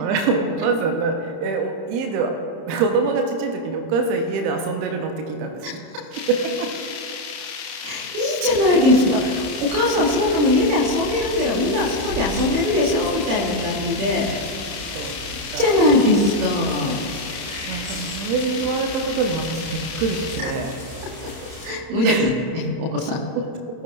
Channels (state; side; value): late; left; 31 ms